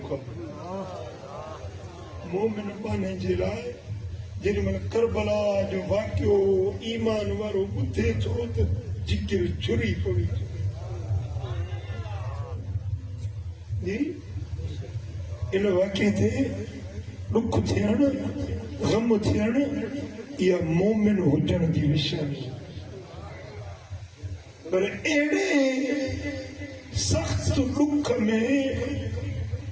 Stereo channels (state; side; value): identical; both; correlation 1.00